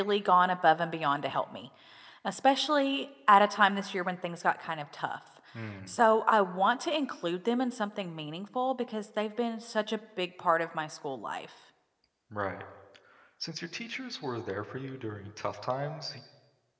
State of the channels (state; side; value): identical; both; correlation 1.00